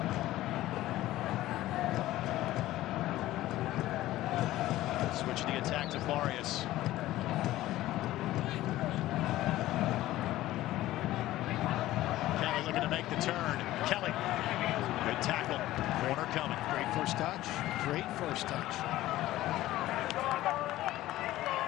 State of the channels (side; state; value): right; quieter; 15.6 dB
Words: Switch the attack to Farias. Kelly looking to make the turn. Kelly, good tackle. Corner coming. Great first touch. Great first touch.